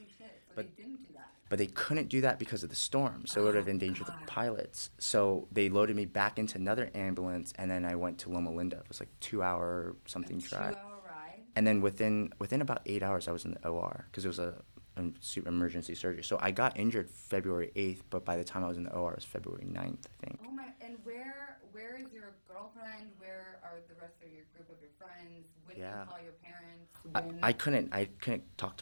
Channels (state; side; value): inverted; both; correlation -1.00